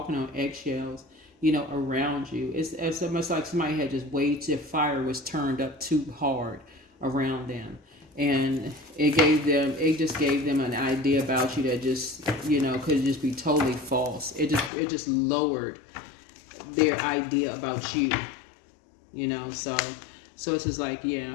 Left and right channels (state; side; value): drops out; right; at 14.7 s